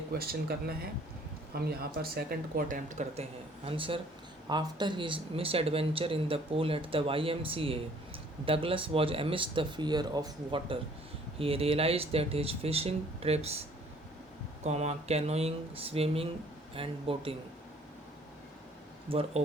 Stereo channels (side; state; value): both; normal; correlation 0.58